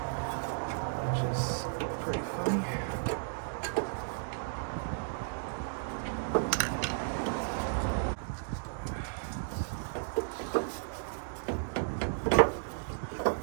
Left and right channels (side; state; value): left; silent; digital silence